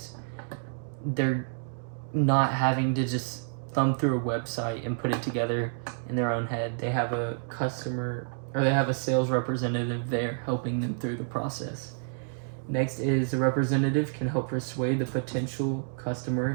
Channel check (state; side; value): silent; left; digital silence